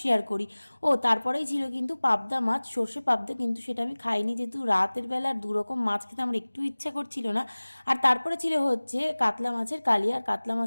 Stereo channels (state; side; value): inverted; both; correlation -1.00